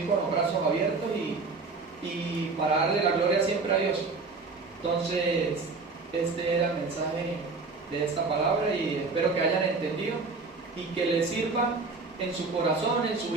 con los brazos abiertos y para darle la gloria siempre a Dios. Entonces, este era el mensaje de esta palabra y espero que hayan entendido y que les sirva en su corazón, en su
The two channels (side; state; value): left; quieter; 4.1 dB